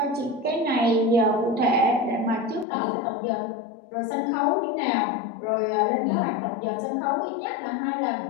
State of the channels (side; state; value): right; drops out; at 2.7 s